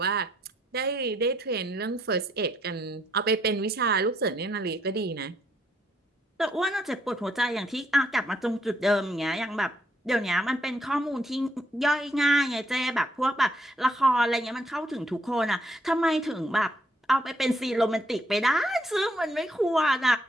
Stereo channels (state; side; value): normal; both; correlation 0.71